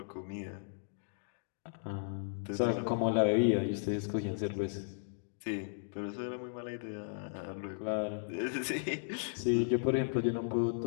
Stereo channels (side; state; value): right; silent; digital silence